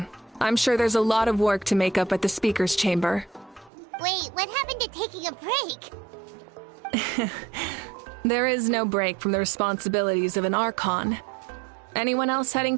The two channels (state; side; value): drops out; left; at 3.7 s